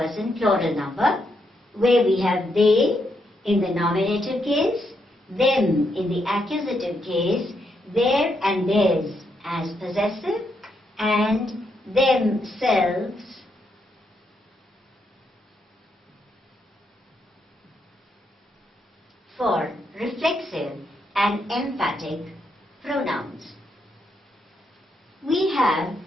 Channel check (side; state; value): both; normal; correlation 0.79